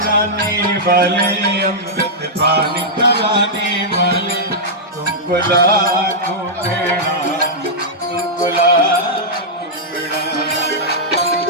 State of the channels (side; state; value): both; normal; correlation -0.09